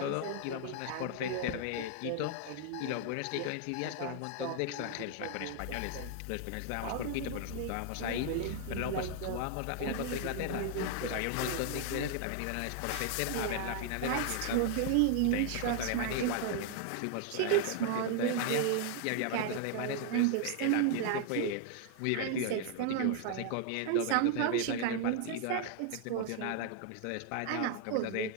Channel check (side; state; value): both; different; correlation 0.00